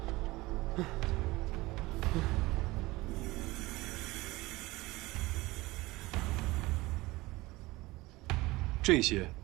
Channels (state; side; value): quieter; left; 20.4 dB